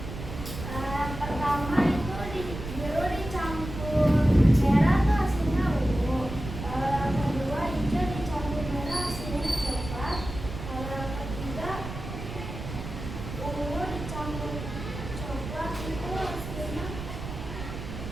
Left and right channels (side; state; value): right; noise; rumble, 8 dB below the sound